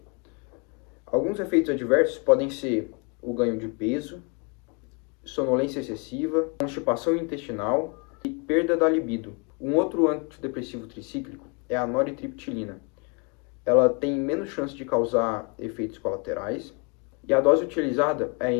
Alguns efeitos adversos podem ser o ganho de peso, sonolência excessiva, constipação intestinal e perda da libido. Um outro antidepressivo tricíclico é a noritriptilina. Ela tem menos chance de causar efeitos colaterais e a dose utilizada é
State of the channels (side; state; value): right; quieter; 34.3 dB